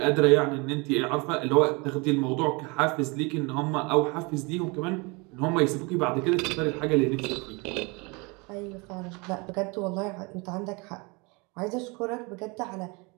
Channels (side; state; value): left; quieter; 28.2 dB